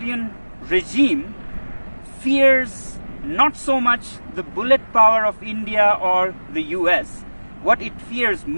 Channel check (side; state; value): both; inverted; correlation -1.00